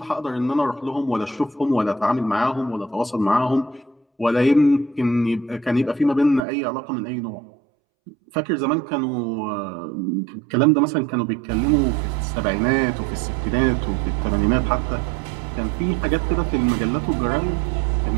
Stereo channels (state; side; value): drops out; left; at 6.4 s